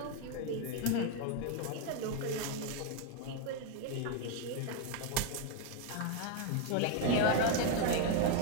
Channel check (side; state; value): both; different; correlation 0.01